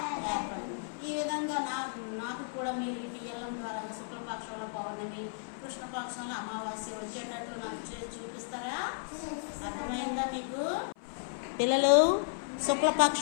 ఏర్పడుతుంది. ఈ విధంగా నాకు కూడా మీరు ఈ టీఎల్ఎం ద్వారా శుక్లపక్షంలో పౌర్ణమి, కృష్ణపక్షంలో అమావాస్య వచ్చేటట్లు నాకు చూపిస్తారా? అర్థమైందా మీకు? పిల్లలు,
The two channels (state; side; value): silent; right; 55 dB below the other